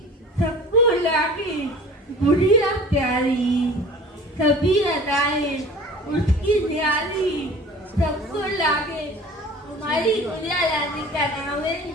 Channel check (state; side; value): normal; both; correlation 0.42